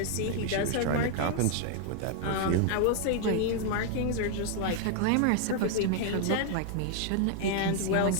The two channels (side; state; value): both; different; correlation 0.00